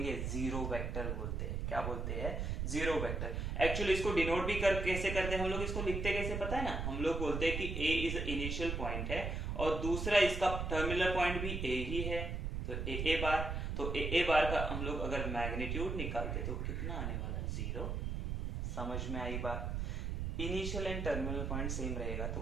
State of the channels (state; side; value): noise; right; rumble, 2 dB below the sound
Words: जीरो वेक्टर बोलते हैं। क्या बोलते हैं? Zero vector. एक्चुअली इसको डिनोट भी कैसे करते हैं हम लोग, इसको लिखते कैसे पता है ना? हम लोग बोलते हैं कि ए इज इनिशियल पॉइंट है और दूसरा इसका टर्मिनल पॉइंट भी ए ही है, तो ए बार। तो ए बार का हम लोग अगर मैग्नीट्यूड निकालते तो कितना आने वाला? जीरो। समझ में आई बात? Initial and terminal point same रहेगा तो